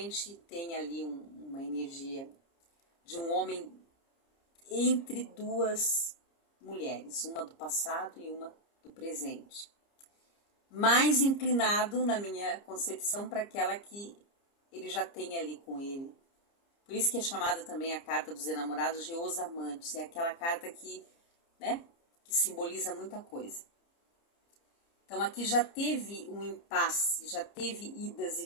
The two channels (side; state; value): right; late; 30 ms